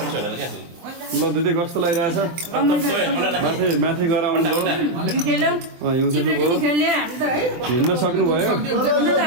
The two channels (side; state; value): left; late; 23 ms